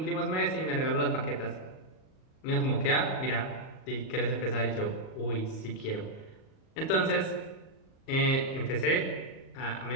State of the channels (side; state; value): right; late; 38 ms